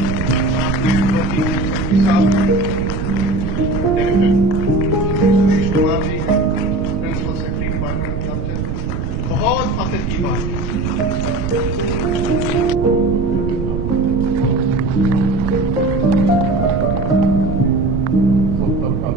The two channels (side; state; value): right; noise; rumble, 3 dB below the sound